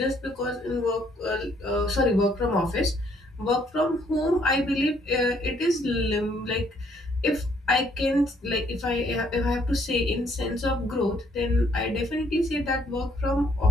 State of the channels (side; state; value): both; normal; correlation 0.67